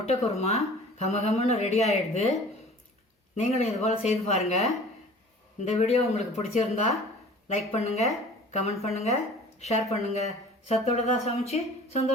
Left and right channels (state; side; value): normal; both; correlation 0.45